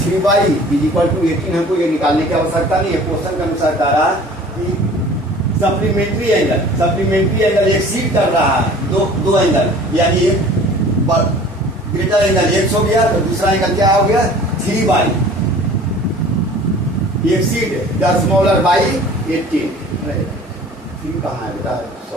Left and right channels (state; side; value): normal; both; correlation 0.47